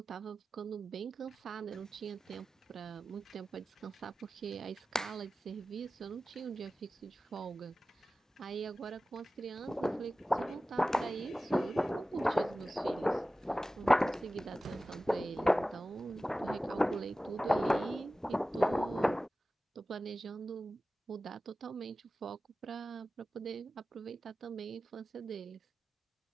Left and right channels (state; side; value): normal; both; correlation 0.95